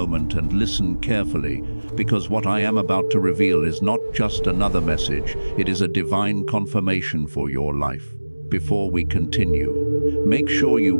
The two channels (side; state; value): both; inverted; correlation -1.00